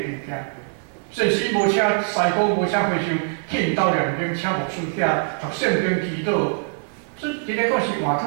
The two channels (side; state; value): left; silent; 64 dB below the other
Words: 件。即使无车西高，无车回乡，去因兜两边请牧师遐读圣经祈祷，所以真个讲是换